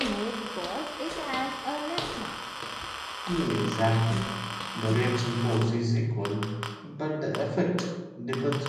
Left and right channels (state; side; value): identical; both; correlation 1.00